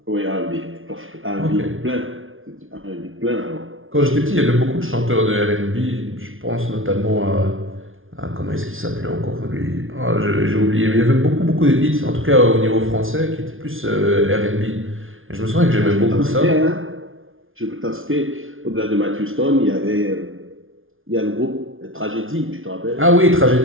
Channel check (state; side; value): late; left; 0.59 ms